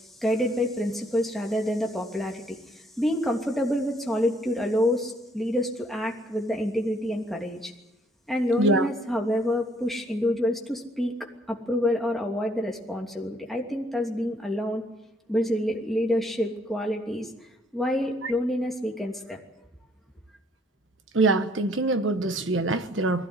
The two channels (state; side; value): normal; both; correlation 0.65